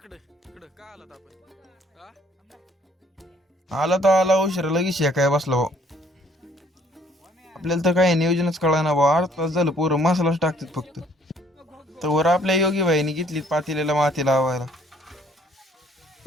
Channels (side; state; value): both; normal; correlation 0.61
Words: इकडे का आलात आपण? आला तर आला उशीर, लगेच शेकाय बसला भाऊ. आपल्याला तर काही नियोजनच कळा ना भाऊ. 8 तास झालं पोरं मसालाच टाकतात फक्त. तर आपल्या योगी भाईनी घेतली पातेल्याला माती लावायला.